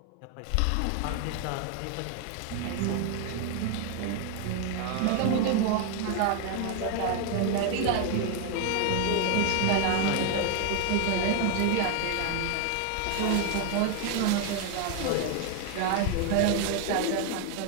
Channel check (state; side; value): different; both; correlation 0.01